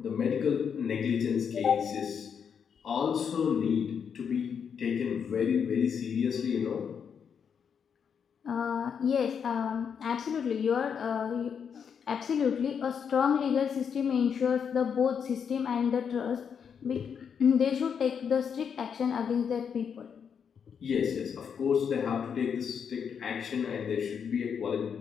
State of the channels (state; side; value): quieter; right; 7.1 dB